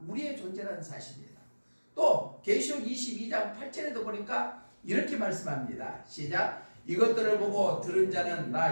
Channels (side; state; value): both; inverted; correlation -1.00